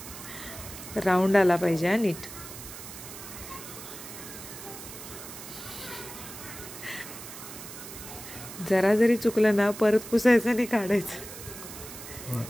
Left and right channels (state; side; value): noise; right; hiss, 12 dB below the sound